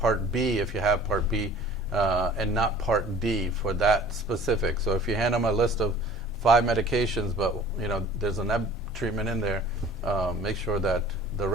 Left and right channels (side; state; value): both; normal; correlation 0.48